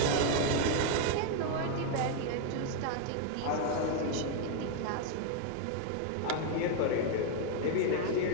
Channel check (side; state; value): both; different; correlation 0.00